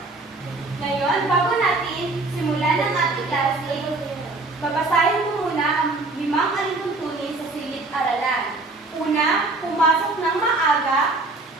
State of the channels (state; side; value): quieter; left; 3.2 dB